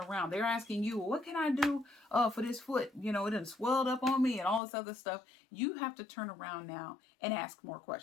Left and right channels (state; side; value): drops out; right; at 4.6 s